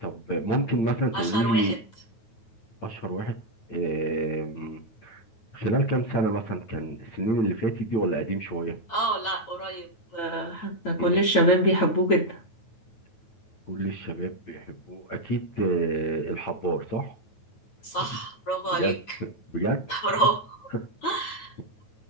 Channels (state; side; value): late; right; 9.0 ms